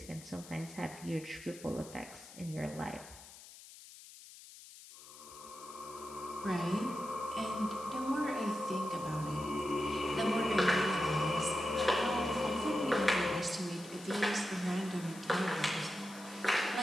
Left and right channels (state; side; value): noise; left; hiss, 17 dB below the sound